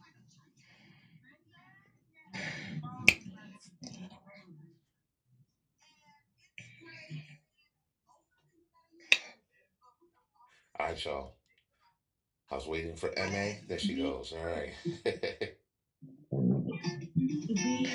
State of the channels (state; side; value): identical; both; correlation 1.00